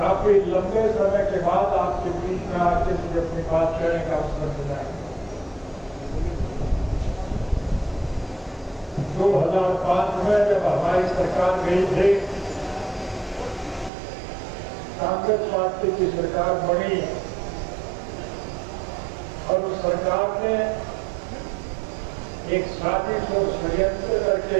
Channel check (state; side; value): drops out; left; at 13.9 s